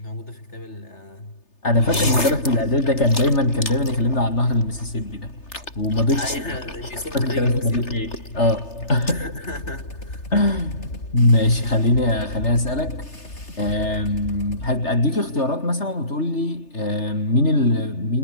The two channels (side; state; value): right; late; 3.3 ms